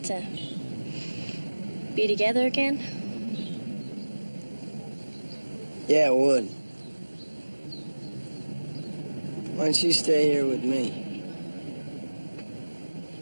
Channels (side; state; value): both; inverted; correlation -1.00